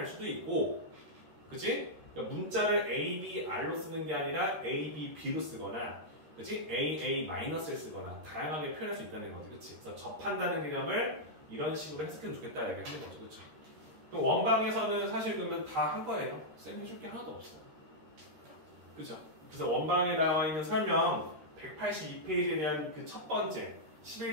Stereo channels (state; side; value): late; left; 13 ms